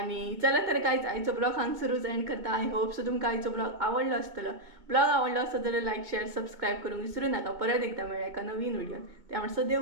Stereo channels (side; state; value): left; late; 2.1 ms